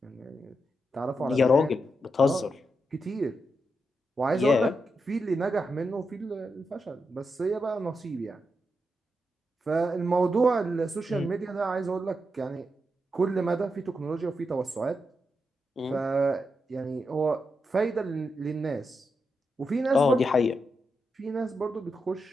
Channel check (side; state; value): both; normal; correlation 0.85